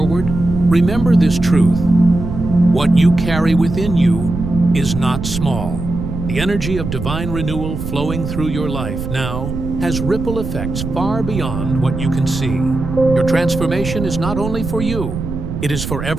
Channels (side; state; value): right; noise; rumble, 6 dB below the sound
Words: remember this truth. What you carry within you is not small. The energy of divine renewal flowing through your life now has ripple effects far beyond what you can see. Your transformation is not only for you, it is for